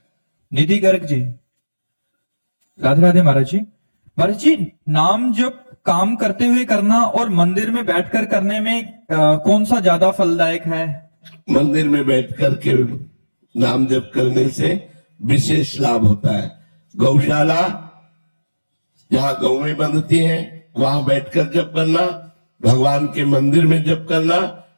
निधि गर्ग जी। राधे राधे महाराज जी। महाराज जी, नाम जप काम करते हुए करना और मंदिर में बैठकर करने में कौन सा ज्यादा फलदायक है? मंदिर में बैठकर के नाम जप करने से विशेष लाभ होता है। गौशाला जहाँ गौएं बंधती हैं वहां बैठकर जप करना, भगवान के मंदिर में जप करना,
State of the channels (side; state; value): both; inverted; correlation -1.00